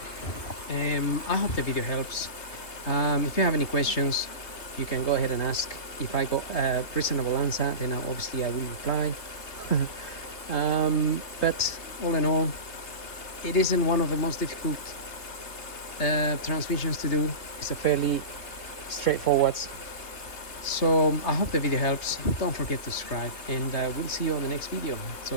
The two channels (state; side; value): late; right; 3.3 ms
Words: I hope the video helps. If you have any questions, you can go ahead and ask. If I got a reasonable answer, then obviously I will reply. But all in all, it isn't one of the most difficult transmissions to do. It's a fairly straightforward. So I hope the video helps. Don't forget to subscribe, and we'll see you on the next video.